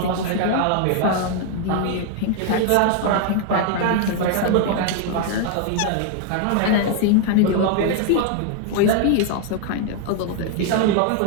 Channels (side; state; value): both; different; correlation 0.00